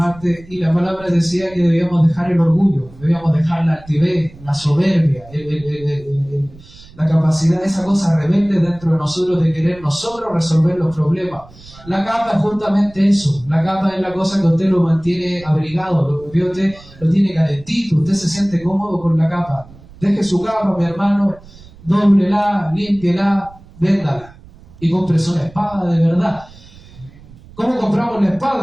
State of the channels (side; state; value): right; noise; rumble, 22 dB below the sound